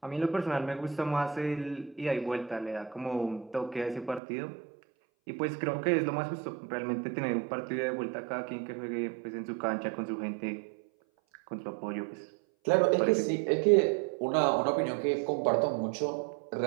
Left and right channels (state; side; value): drops out; left; at 4.2 s